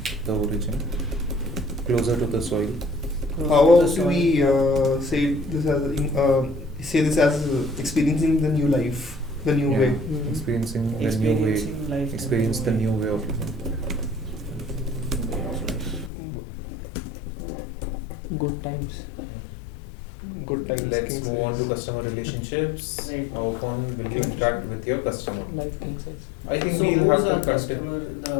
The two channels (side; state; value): right; drops out; at 16.1 s